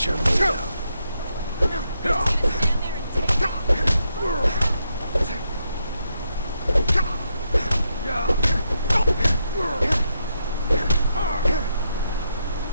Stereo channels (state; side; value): inverted; both; correlation -0.81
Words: you're made of.